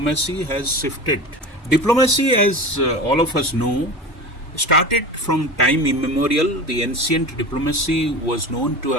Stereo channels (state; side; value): normal; both; correlation 0.31